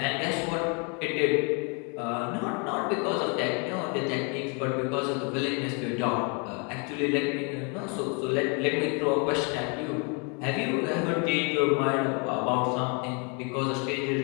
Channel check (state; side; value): quieter; right; 35.2 dB